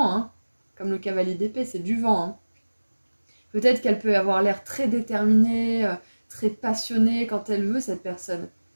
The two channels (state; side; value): inverted; both; correlation -1.00